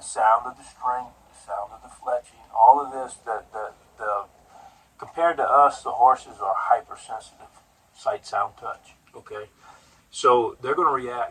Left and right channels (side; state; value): both; identical; correlation 1.00